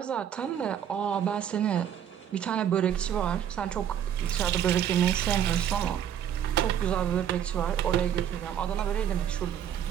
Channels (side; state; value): left; quieter; 9.5 dB